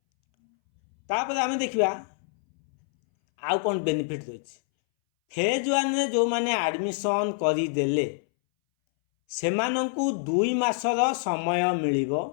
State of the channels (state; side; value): silent; right; 61 dB below the other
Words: तापर आम देखा आउ कौन बेनिफिट रही फेज 1 जो मैंने एडमिशन करदे ସେମାନଙ୍କୁ 2 ମାସର ସମୟ ମିଳିବ।